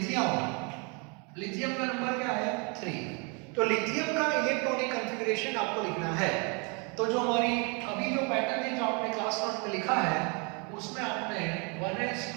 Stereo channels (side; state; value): left; quieter; 33.1 dB